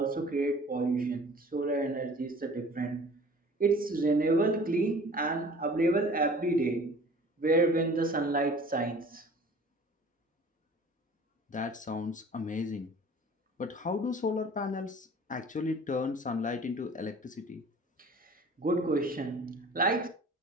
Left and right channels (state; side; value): normal; both; correlation 0.46